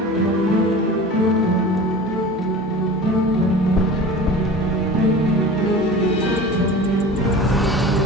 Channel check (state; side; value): normal; both; correlation 0.37